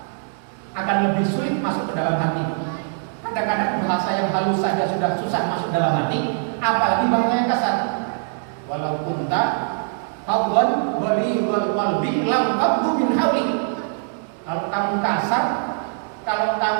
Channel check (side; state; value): left; silent; digital silence